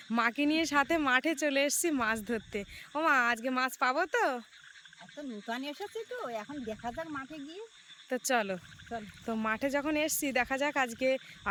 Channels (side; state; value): both; identical; correlation 1.00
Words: মাকে নিয়ে সাথে মাঠে চলে এসেছি মাছ ধরতে। ও মা, আজকে মাছ পাবো তো? এত নূতন এসেছি তো, এখন দেখা যাক মাঠে গিয়ে। তো চলো, তো মাঠে যখন এসছি দেখা যাক আজকে,